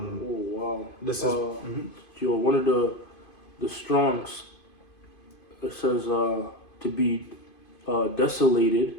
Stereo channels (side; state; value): right; late; 2.5 ms